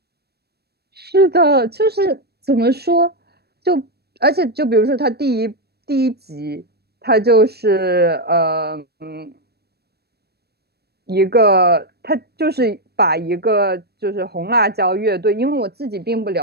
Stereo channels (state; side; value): late; left; 0.47 ms